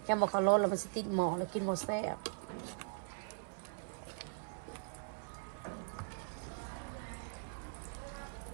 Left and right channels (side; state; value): left; silent; 51 dB below the other